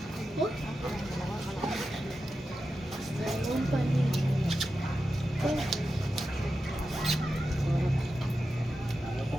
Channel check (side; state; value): both; normal; correlation 0.91